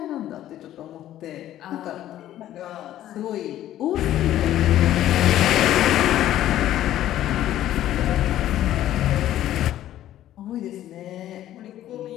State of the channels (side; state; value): right; quieter; 12.8 dB